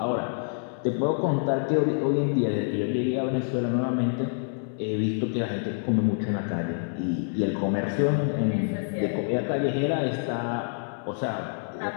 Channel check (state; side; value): silent; right; 60 dB below the other